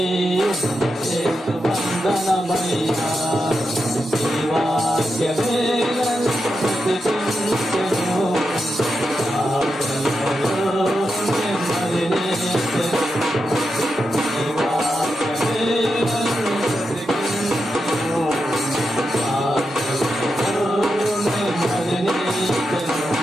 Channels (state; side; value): normal; both; correlation 0.87